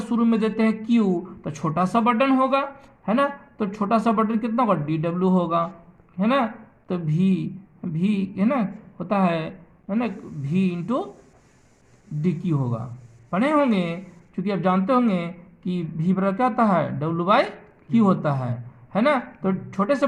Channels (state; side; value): identical; both; correlation 1.00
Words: शुरू में देते हैं Q, तो छोटा सा बटन होगा, है ना, तो छोटा सा बटन कितना होगा, DW होगा, है ना। तो भी है ना होता है ना, V इंटू DQ होगा, पढ़े होंगे, क्योंकि आप जानते होंगे कि V बराबर क्या होता है, W/Q होता है ना। तो छोटे से